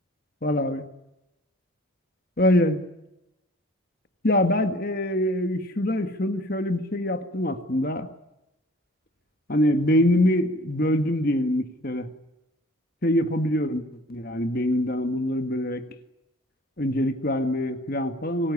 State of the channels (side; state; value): both; normal; correlation 0.51